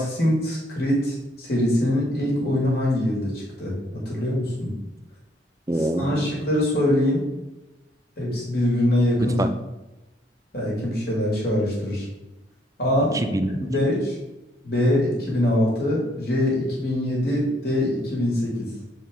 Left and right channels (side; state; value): both; normal; correlation 0.68